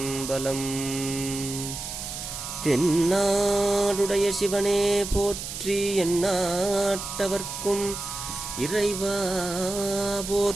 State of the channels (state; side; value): noise; right; hiss, 7 dB below the sound